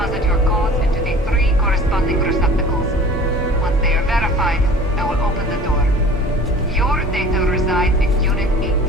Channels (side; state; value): both; normal; correlation 0.44